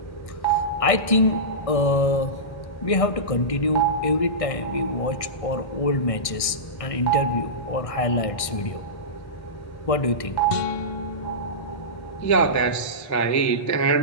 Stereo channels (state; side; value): late; right; 1.6 ms